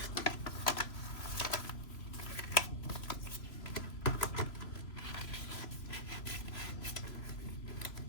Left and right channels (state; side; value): late; right; 3.0 ms